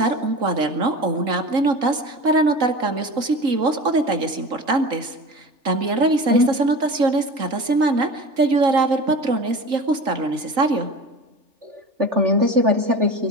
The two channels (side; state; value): left; late; 3.8 ms